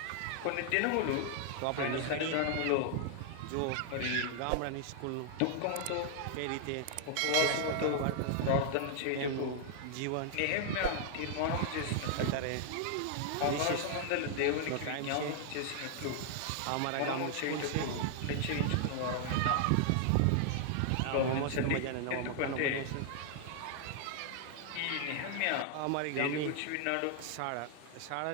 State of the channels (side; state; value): both; different; correlation 0.00